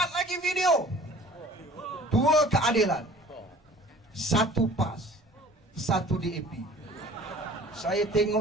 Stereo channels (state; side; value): normal; both; correlation 0.48